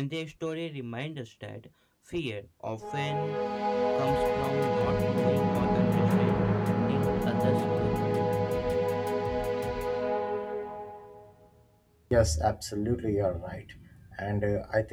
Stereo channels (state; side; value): identical; both; correlation 1.00